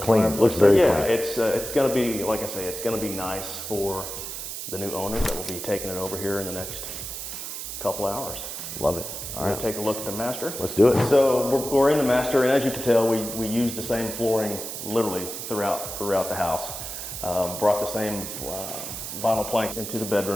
Fireplace. Looks very clean. It's going to be, like I say, it's going to be nice for the new owners that will be taking it over here in the next couple hours. Love it. All right, take a look at the master. Let's do it. So we're in the master, and as you can tell, we used the same flooring literally throughout the house. Brought the same vinyl plank into the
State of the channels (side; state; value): right; noise; hiss, 7 dB below the sound